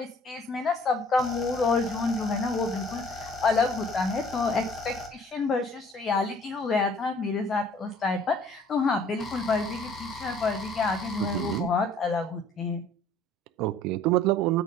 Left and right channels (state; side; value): normal; both; correlation 0.54